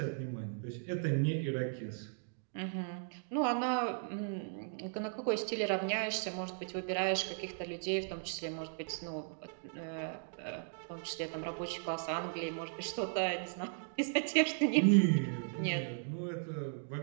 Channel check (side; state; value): left; silent; digital silence